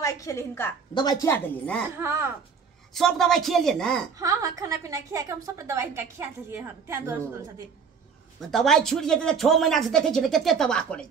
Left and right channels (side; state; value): left; quieter; 6.0 dB